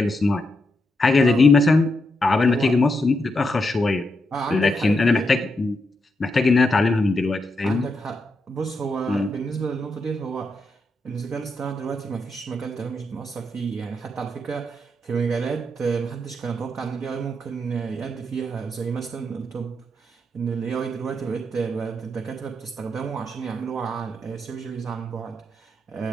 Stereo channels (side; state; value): both; normal; correlation 0.83